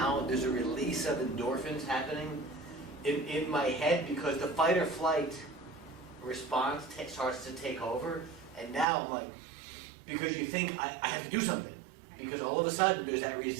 There's a release of endorphins happening in my head because the fight or flight response starts to take over. And now I'm like, because you think I have to do something. Because all of a sudden there's that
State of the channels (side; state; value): left; drops out; at 8.8 s